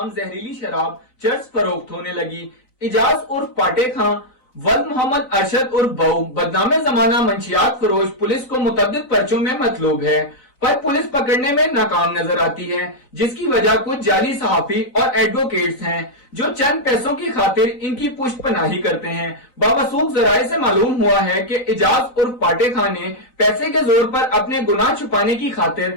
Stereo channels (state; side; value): late; right; 4.0 ms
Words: जहरीली शराब चर्स फरोख्त होने लगी। इजाज उर्फ पाटे खां, वल्द मोहम्मद अरशद उर्फ बऊ बदनामे जमाना मंशियात फरोश पुलिस को मुतअद्दिद पर्चों में मतलूब है, पर पुलिस पकड़ने में नाकाम नजर आती है, जिसकी वजह कुछ जाली सहाफी और एडवोकेट्स हैं जो चंद पैसों की खातिर इनकी पुष्ट पनाही करते हैं। बावसूख जराये से मालूम हुआ है कि इजाज उर्फ पाटे खान ने पैसे के जोर पर अपने गुनाह छुपाने की खातिर